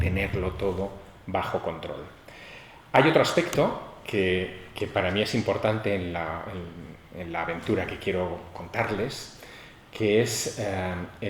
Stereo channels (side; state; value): both; identical; correlation 1.00